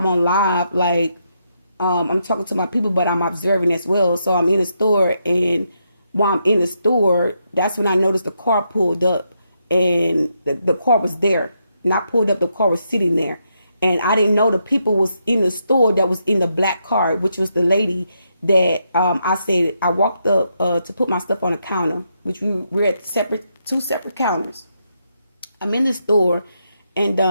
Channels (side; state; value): both; inverted; correlation -0.80